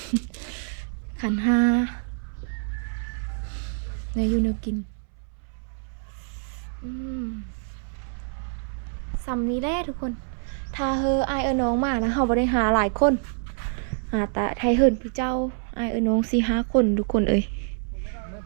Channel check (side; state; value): left; silent; 61 dB below the other